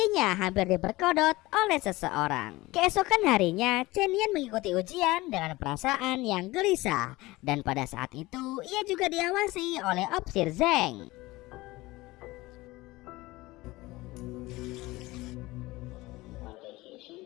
hampir diperkodok oleh seseorang. Keesokan harinya, Chen Yan mengikuti ujian dengan perasaan yang gelisah dan pada saat itu ia juga diawasi oleh Opsir Zeng.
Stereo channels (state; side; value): quieter; right; 20.1 dB